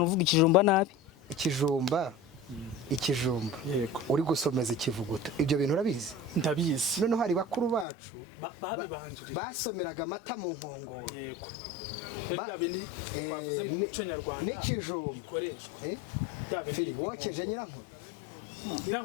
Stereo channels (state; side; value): drops out; right; at 7.9 s